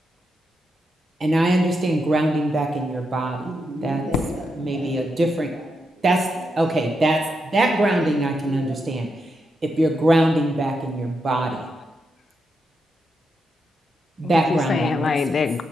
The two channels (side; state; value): both; normal; correlation 0.84